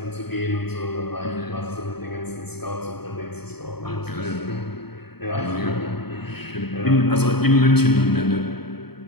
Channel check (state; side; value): late; right; 0.97 ms